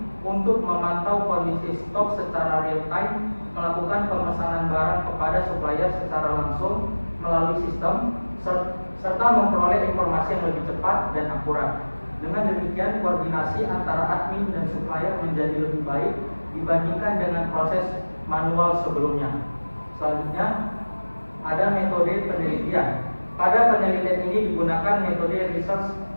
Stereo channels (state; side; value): inverted; both; correlation -1.00